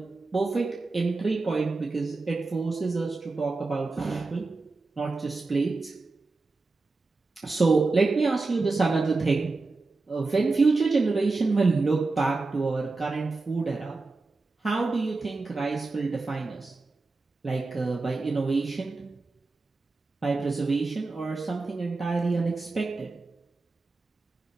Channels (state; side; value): quieter; left; 3.6 dB